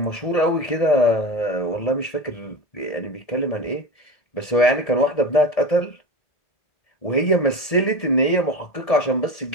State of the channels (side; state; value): right; late; 1.7 ms